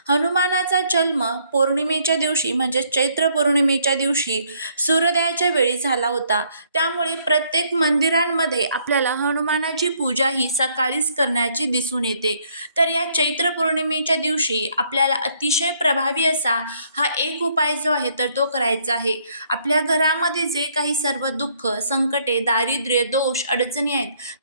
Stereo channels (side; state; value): both; inverted; correlation -0.67